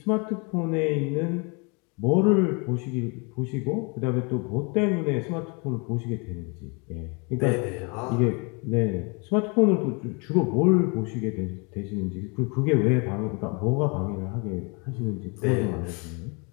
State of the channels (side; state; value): right; quieter; 32.2 dB